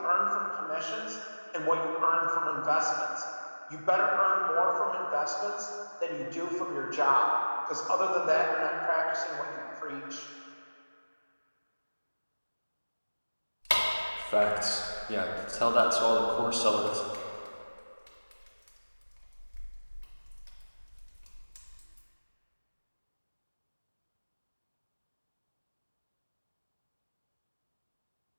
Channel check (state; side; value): inverted; both; correlation -1.00